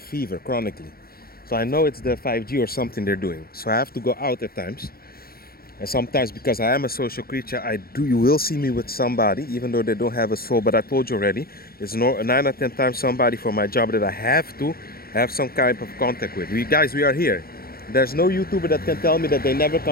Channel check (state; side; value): late; right; 0.44 ms